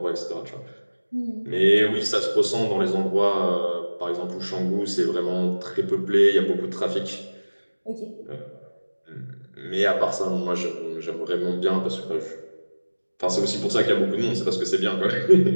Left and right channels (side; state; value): both; inverted; correlation -1.00